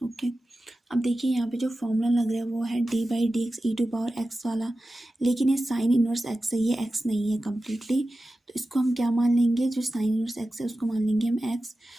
Okay, अब देखिए यहाँ पे जो फॉर्मूला लग रहा है वो है D by D x E to power x वाला, लेकिन ये साइन इनवर्स एक्स है, ये एक्स नहीं है कम्प्लीटली। तो इसको हम क्या मान लेंगे, जो साइन इनवर्स एक्स है उसको मान लेंगे हम एक्स।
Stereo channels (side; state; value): both; normal; correlation 0.94